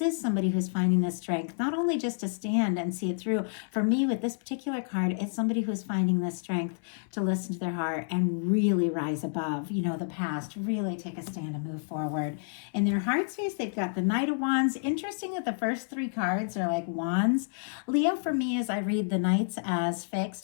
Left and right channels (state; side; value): silent; right; 58 dB below the other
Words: somebody who's finding the strength, not only just to stand and see it through. For me, with this particular card, it's somebody who's finding the strength to listen to their heart and really rise above, the past, really take a stand and move forward. In their heart space, they've got the Knight of Wands. Interesting that the first 3 cards are like wands. Leo, for me, as I read the Knights as fixed.